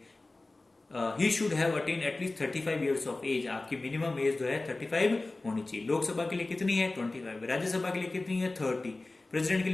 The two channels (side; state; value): right; quieter; 3.1 dB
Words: He should have attain at least 35 years of age. आपकी मिनिमम एज जो है 35 होनी चाहिए। लोकसभा के लिए कितनी है 25, राज्यसभा के लिए कितनी है 30, प्रेसिडेंट के